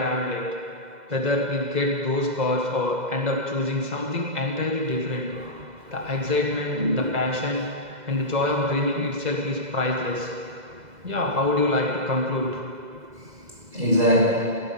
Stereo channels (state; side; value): late; left; 2.0 ms